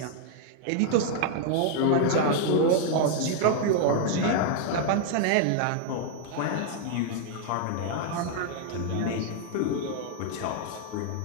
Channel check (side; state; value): both; different; correlation 0.00